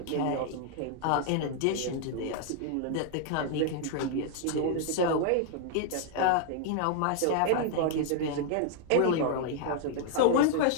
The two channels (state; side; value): different; both; correlation 0.00